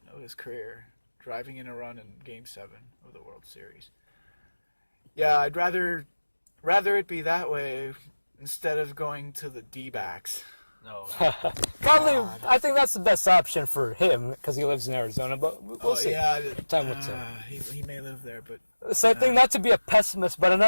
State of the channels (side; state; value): both; inverted; correlation -1.00